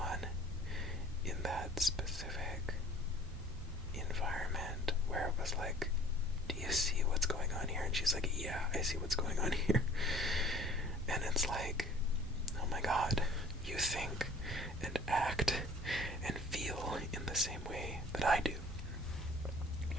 in that specific environment where it was like, do you see what's going on here? And she's like, yeah, I see what's going on here. And it's like, oh my god, you think and act and feel in the same way that I do.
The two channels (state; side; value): normal; both; correlation 0.50